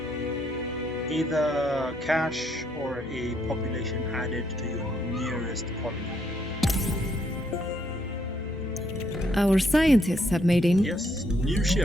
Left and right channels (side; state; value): both; normal; correlation 0.72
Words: either cash or a population added to your nearest colony. Our scientists have made a Yes, new